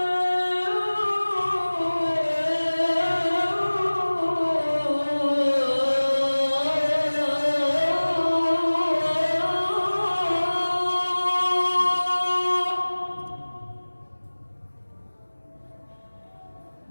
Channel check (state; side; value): inverted; both; correlation -1.00